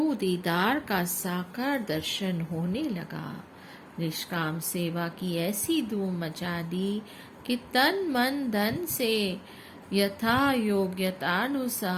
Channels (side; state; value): both; identical; correlation 1.00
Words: दीदार का साकार दर्शन होने लगा। निष्काम सेवा की ऐसी धूम मचा दी कि तन मन धन से यथा